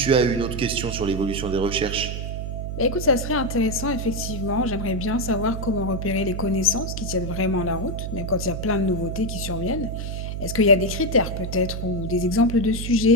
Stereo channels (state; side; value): noise; right; hum, 5 dB below the sound